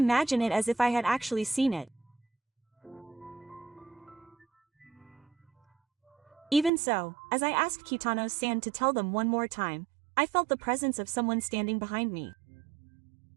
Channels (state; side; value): drops out; left; at 6.7 s